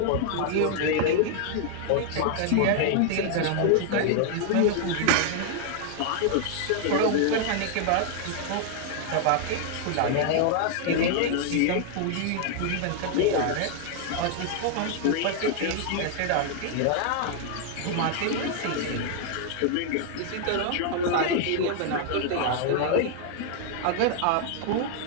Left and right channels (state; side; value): different; both; correlation 0.00